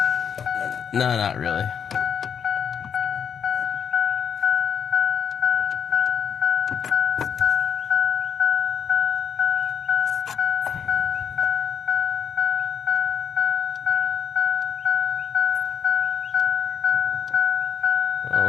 No, not really. Well,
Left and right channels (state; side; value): quieter; right; 7.3 dB